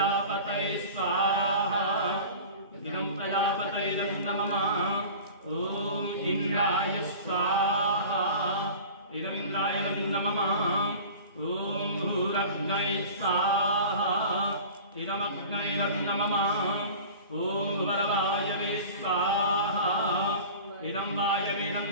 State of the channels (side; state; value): both; inverted; correlation -0.39